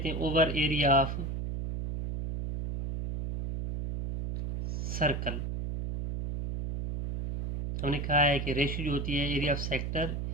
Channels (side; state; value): right; noise; hum, 4 dB below the sound